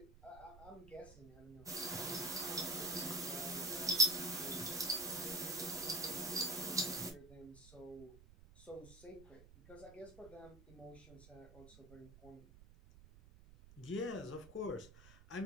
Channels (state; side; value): noise; right; rumble, 19 dB below the sound